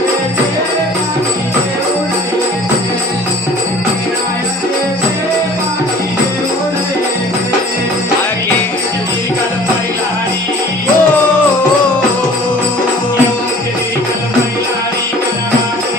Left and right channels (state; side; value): normal; both; correlation 0.48